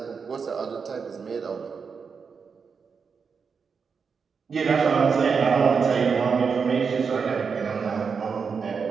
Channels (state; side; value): quieter; left; 5.7 dB